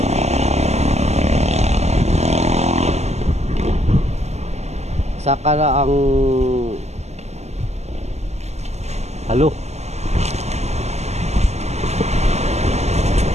Saka na ang halo.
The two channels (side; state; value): left; late; 0.32 ms